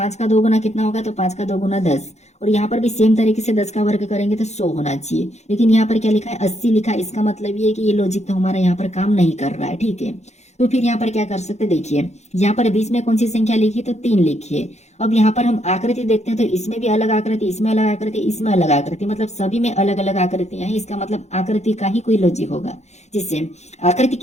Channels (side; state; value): right; late; 0.33 ms